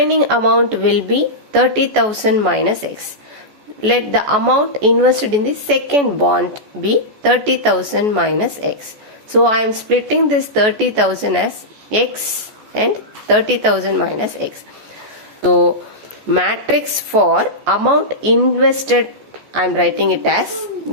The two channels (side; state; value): left; late; 14 ms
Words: amount will be 30,000 minus X. Let the amount invested in the second bond be 30,000 minus X. So I am splitting this 30,000 as X and 30,000 minus X. So matrix for amount invested, I am writing it as